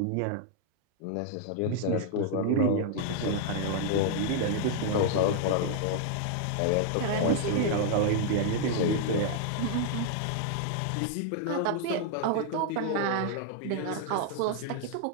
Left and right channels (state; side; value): different; both; correlation -0.01